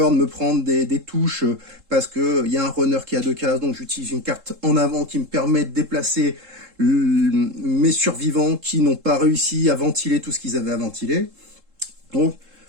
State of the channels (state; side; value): late; left; 3.7 ms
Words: de me prendre des touches parce qu'il y a un runner qui a 2 cases, donc j'utilise une carte en avant qui me permet de déplacer mes survivants qui n'ont pas réussi à ventiler tout ce qu'ils avaient à ventiler. Donc